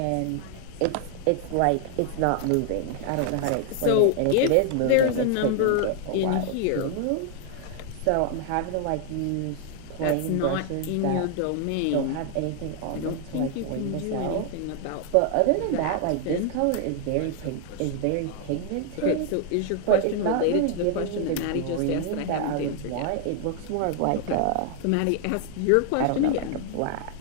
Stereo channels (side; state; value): both; different; correlation 0.00